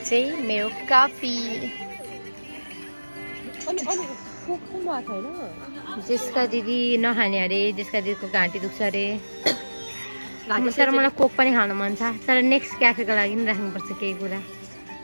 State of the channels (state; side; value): inverted; both; correlation -1.00